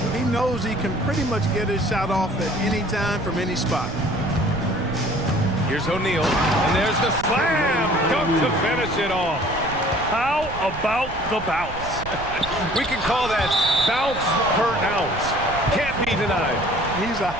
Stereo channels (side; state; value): right; noise; rumble, 11 dB below the sound